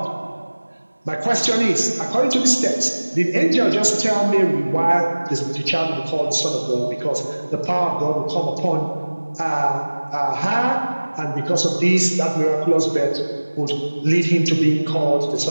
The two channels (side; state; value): both; inverted; correlation -1.00